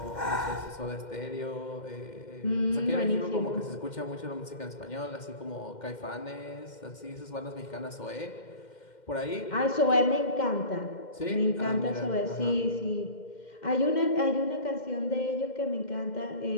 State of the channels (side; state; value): right; late; 2.1 ms